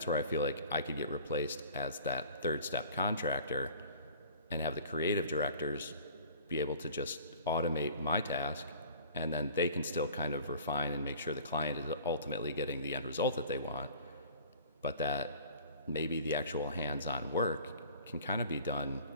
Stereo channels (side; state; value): both; inverted; correlation -0.47